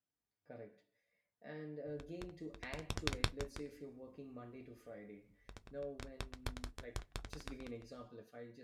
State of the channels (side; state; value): both; identical; correlation 1.00